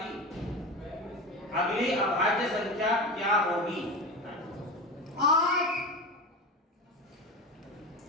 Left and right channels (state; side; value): normal; both; correlation 0.26